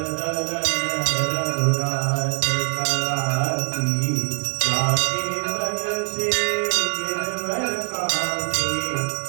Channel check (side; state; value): left; silent; 63 dB below the other